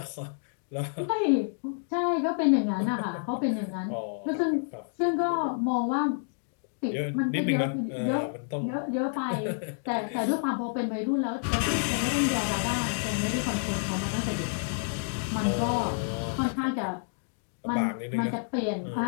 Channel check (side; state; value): right; silent; digital silence